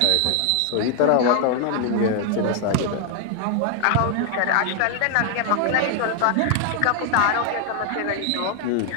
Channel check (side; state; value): both; different; correlation 0.00